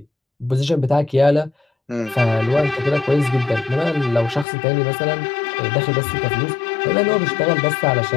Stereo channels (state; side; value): drops out; right; at 4.5 s